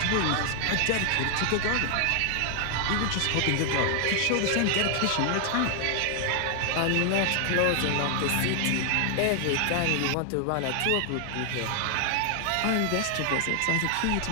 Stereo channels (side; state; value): both; different; correlation 0.00